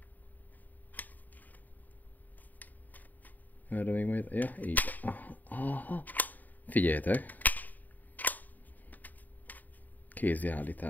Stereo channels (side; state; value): right; late; 0.084 ms